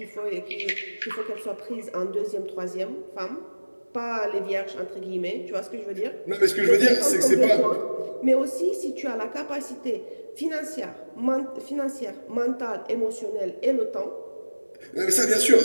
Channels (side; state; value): both; inverted; correlation -1.00